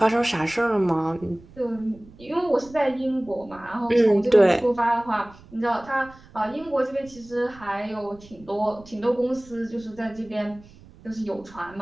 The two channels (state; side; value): noise; right; rumble, 23 dB below the sound